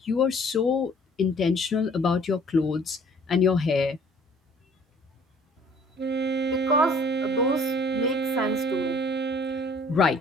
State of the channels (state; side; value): normal; both; correlation 0.55